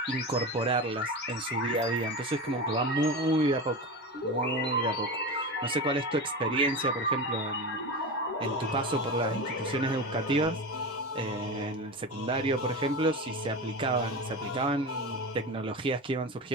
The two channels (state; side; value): normal; both; correlation 0.24